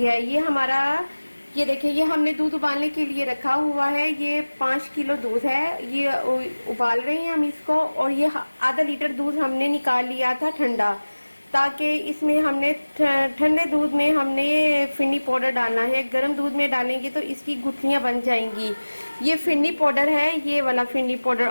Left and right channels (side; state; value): both; inverted; correlation -1.00